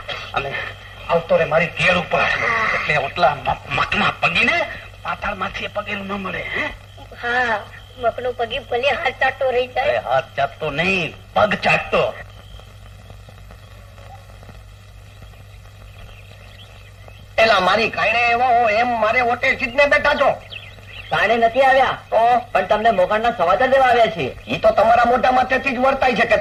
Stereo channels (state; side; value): identical; both; correlation 1.00